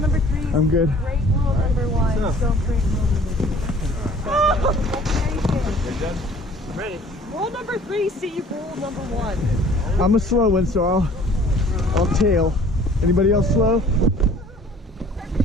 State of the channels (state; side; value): normal; both; correlation 0.52